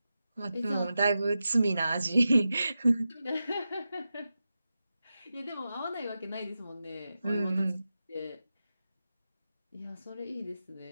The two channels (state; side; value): inverted; both; correlation -0.92